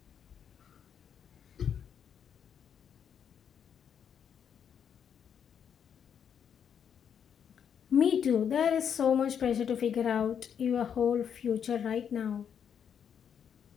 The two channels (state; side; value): quieter; right; 8.0 dB